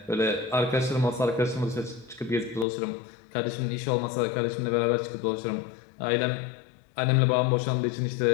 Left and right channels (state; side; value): drops out; right; at 2.7 s